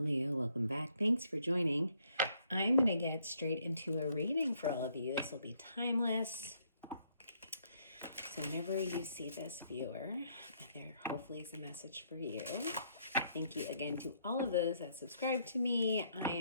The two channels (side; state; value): both; inverted; correlation -0.70